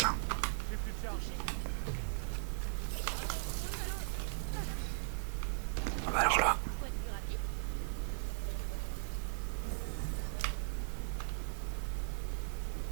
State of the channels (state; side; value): silent; left; digital silence